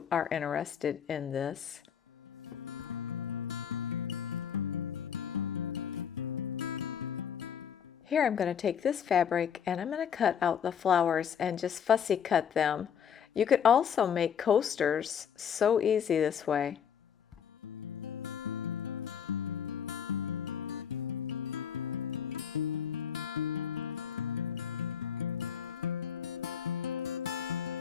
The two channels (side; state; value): right; quieter; 7.9 dB